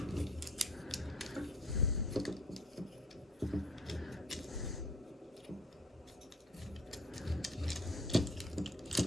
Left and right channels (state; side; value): normal; both; correlation 0.52